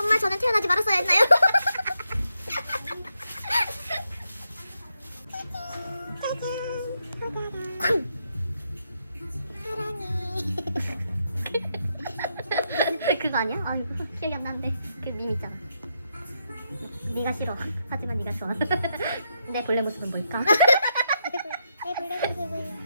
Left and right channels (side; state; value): both; inverted; correlation -0.82